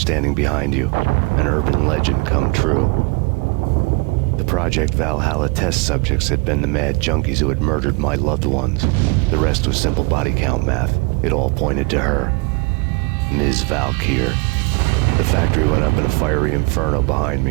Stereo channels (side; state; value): left; quieter; 28.6 dB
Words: behind you. An urban legend come true. The Project Valhalla test subjects had been the mad junkies who had murdered my loved ones. The rest was simple body count math. It all pointed to her. Ms. Valkyr. The factory went up in a fiery inferno behind